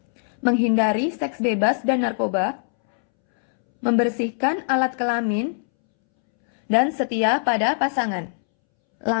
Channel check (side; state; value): right; silent; 64 dB below the other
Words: menghindari seks bebas dan narkoba, membersihkan alat kelamin, dan setia pada pasangan.